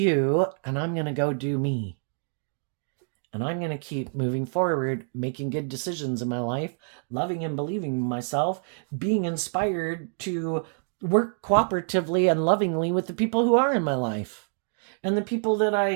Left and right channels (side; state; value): left; silent; 60 dB below the other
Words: and I'm going to go do me. And I'm going to keep moving forward, making good decisions in my life, loving and believing in myself, being inspired to work cooperatively and lovingly with the people who are in my life and the people that